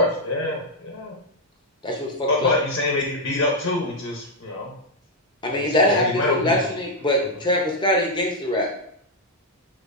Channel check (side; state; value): both; normal; correlation -0.01